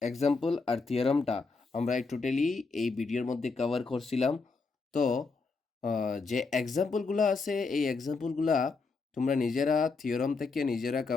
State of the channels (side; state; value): right; quieter; 4.2 dB